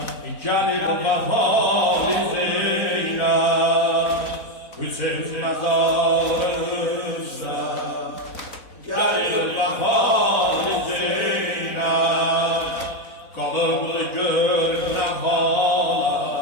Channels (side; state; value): right; late; 4.0 ms